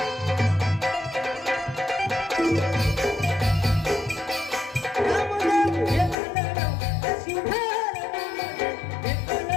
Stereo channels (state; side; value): drops out; right; at 6.2 s